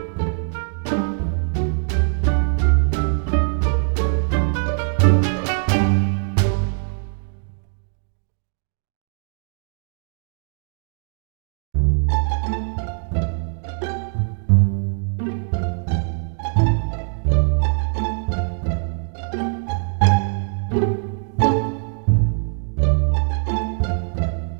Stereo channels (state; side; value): silent; left; 57 dB below the other